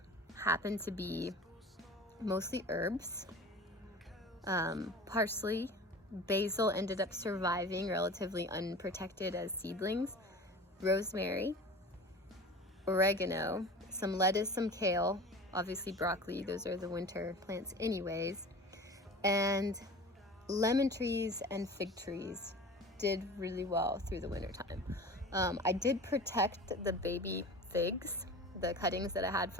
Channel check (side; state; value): both; normal; correlation 0.37